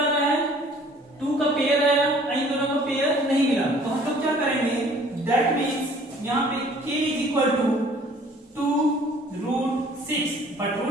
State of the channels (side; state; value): both; normal; correlation 0.54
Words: रहा है 2 का पेयर आया, इन दोनों का पेयर नहीं मिला। तो हम लोग क्या करेंगे दैट मींस यहाँ पे k = 2√6, बट